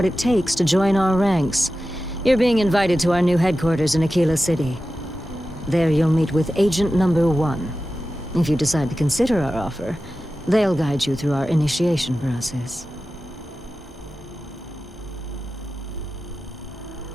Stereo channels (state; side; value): normal; both; correlation 0.93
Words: it takes to join our ranks. You're being invited to our new headquarters in Aquila City. There you'll meet with Agent Number 1. If you decide to consider our offer, they'll guide you through our initiation process.